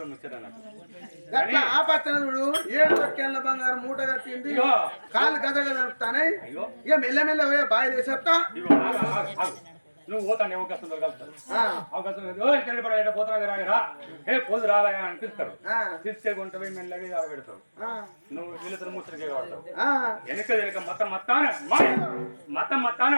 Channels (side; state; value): both; inverted; correlation -1.00